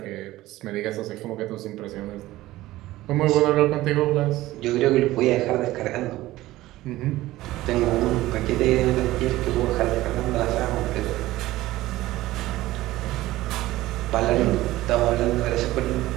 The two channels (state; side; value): quieter; left; 16.8 dB